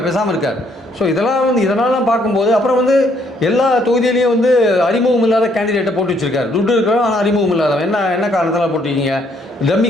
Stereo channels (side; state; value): both; normal; correlation 0.68